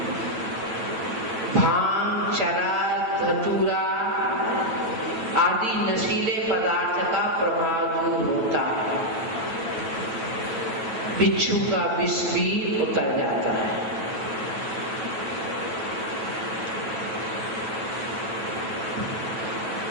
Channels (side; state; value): left; late; 9.1 ms